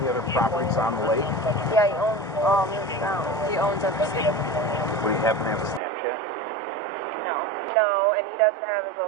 other properties on the lake? Yeah, he owns he owns everything. Would he happen to have a Snapchat? No. No, and he doesn't have his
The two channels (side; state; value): left; drops out; at 5.8 s